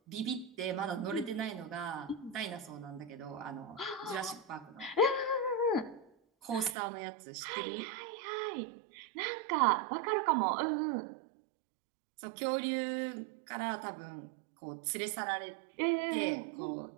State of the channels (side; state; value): left; drops out; at 6.8 s